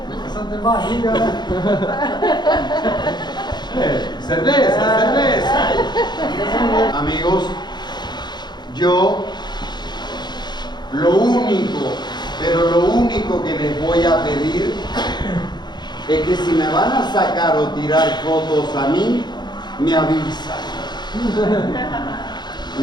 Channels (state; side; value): late; right; 0.21 ms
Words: de barriga, né? Cerveza, cerveza. Amigos, yo lo único, pero lo único que les voy a pedir es que si me van a sacar o tirar fotos a mí, me avisan.